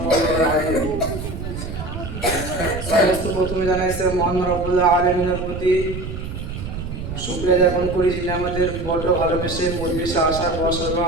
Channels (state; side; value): noise; right; rumble, 7 dB below the sound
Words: عليه وسلم. সমস্ত প্রথমে জানাইছে মহান রব্বুল আলামিনের প্রতি শুকরিয়া জ্ঞাপন করি, যিনি আমাদের বড় ভালোবেসে পরিবেশে আসার বসার বা